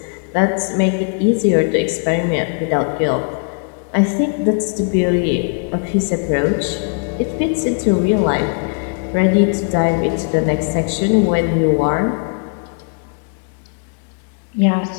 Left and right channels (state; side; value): quieter; right; 39.5 dB